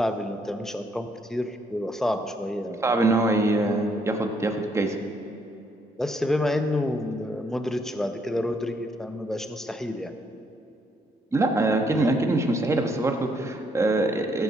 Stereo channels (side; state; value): both; normal; correlation 0.71